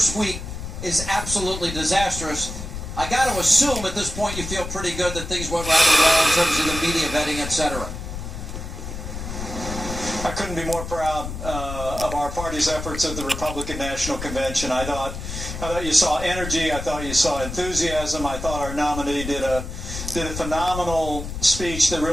week is absolutely disastrous. I got to assume at this point you feel pretty good that things went rather well in terms of the media vetting, etc. I couldn't be more proud of our party's efforts at the Republican National Convention. I thought you saw energy. I thought you saw enthusiasm. I thought our nominee did a phenomenal speech that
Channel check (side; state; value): left; noise; rumble, 8 dB below the sound